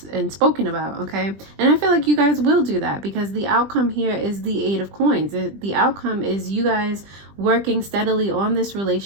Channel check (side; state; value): left; late; 20 ms